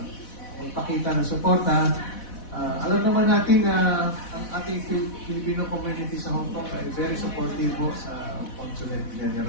magpakita ng suporta. Alam naman natin na ang ating Filipino community sa Hong Kong ay very supportive po sa Consulate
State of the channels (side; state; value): right; late; 4.1 ms